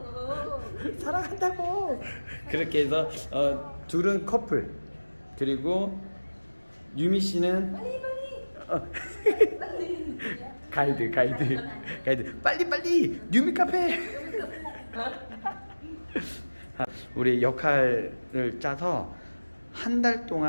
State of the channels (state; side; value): inverted; both; correlation -1.00